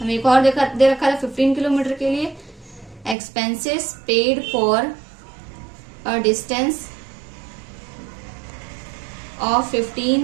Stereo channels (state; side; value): drops out; left; at 3.2 s